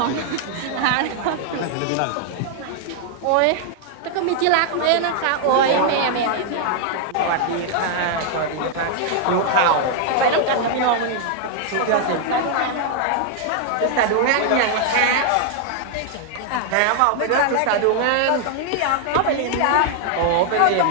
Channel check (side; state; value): both; different; correlation 0.00